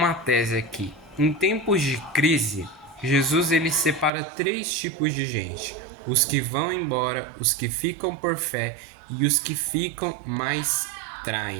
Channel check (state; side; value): drops out; left; at 4.1 s